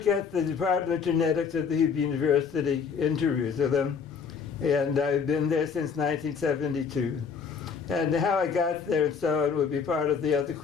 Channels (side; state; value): right; quieter; 6.1 dB